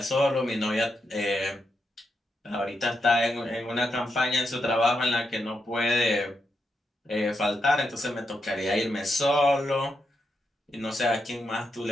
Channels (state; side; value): normal; both; correlation 0.83